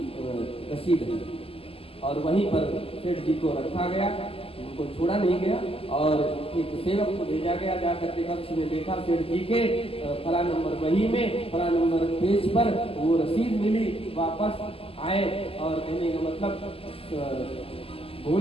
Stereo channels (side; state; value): right; late; 0.28 ms